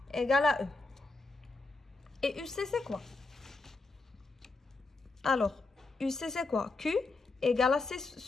égale à E. Et UC, c'est quoi? Alors, UC, c'est quoi? Q égale à C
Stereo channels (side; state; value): right; quieter; 3.5 dB